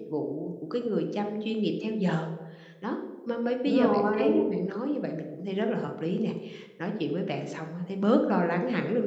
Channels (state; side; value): identical; both; correlation 1.00